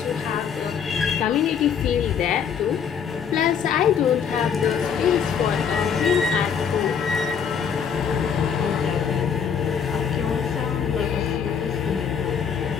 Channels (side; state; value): right; quieter; 7.2 dB